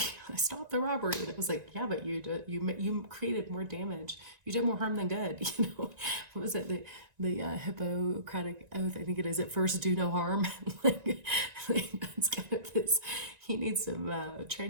I stopped the robbery. And it was like, yeah, but you created more damage, you did more harm than good. What was it, the Hippocratic oath, I think it is, at first do no harm. That's kind of this, he needs some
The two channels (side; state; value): left; late; 1.9 ms